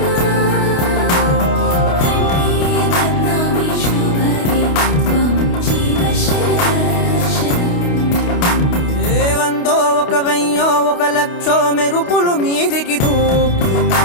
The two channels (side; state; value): right; late; 28 ms